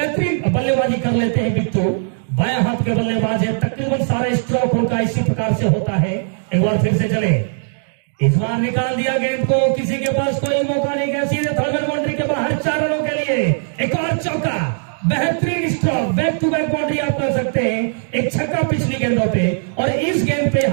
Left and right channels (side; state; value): left; silent; digital silence